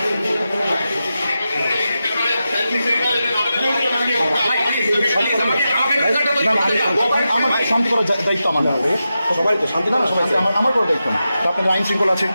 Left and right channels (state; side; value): inverted; both; correlation -0.90